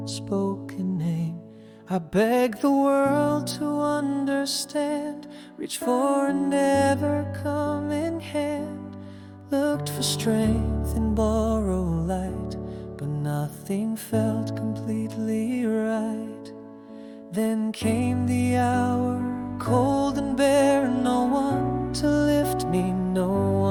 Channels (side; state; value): both; identical; correlation 1.00